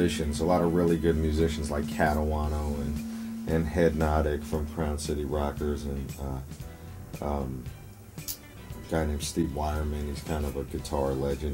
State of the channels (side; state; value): both; identical; correlation 1.00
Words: a lot of really good musicians like Catawano and Headnotic from Crown City Rockers, and a guy named Steve Wireman. He's kind of a guitar